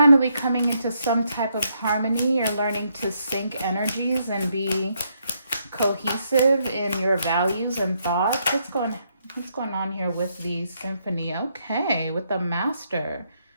coming into some type of harmony. You're learning to sync energies and be cohesive in your values and thoughts. What's going on here with the symphony? Okay, with the master.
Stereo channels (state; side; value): inverted; both; correlation -0.76